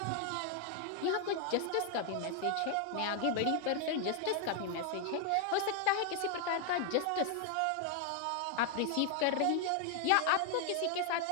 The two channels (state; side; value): different; both; correlation 0.00